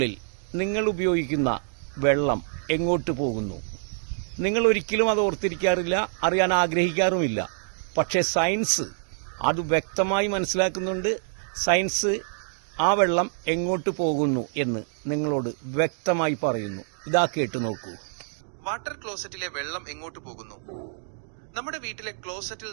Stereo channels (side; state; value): left; silent; digital silence